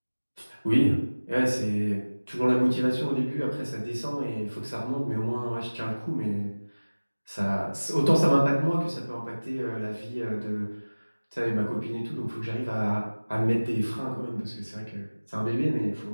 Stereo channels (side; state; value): both; inverted; correlation -1.00